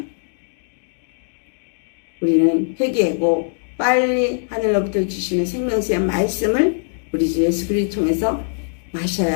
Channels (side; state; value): right; silent; digital silence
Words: 우리는 회개하고 빨리 하늘로부터 주시는 생명수의 말씀을 우리 주 예수 그리스도 통해서